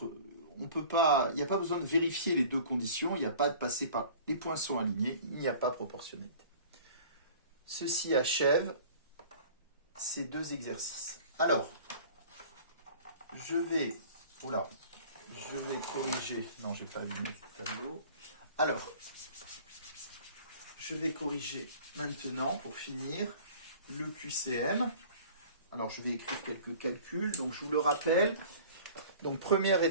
pas, il n'y a pas besoin de vérifier les deux conditions, il n'y a pas de passer par les points sont alignés, il n'y a pas proportionnalité. Ceci achève ces deux exercices. Alors, je vais corriger, non, j'ai pas allumé ce tableau. Alors, je vais corriger maintenant pour finir le QCM. Alors, je vais écrire quelques calculs. Donc, je vous le rappelle. Donc, première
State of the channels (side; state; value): both; inverted; correlation -0.46